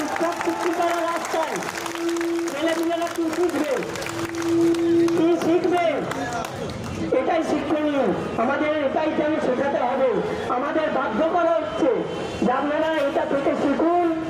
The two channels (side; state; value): both; identical; correlation 1.00